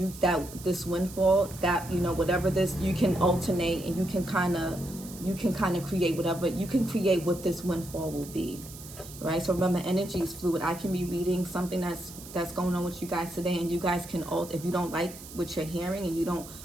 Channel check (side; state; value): right; noise; hiss, 15 dB below the sound